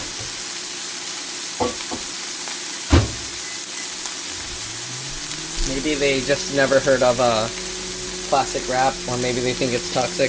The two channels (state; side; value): identical; both; correlation 1.00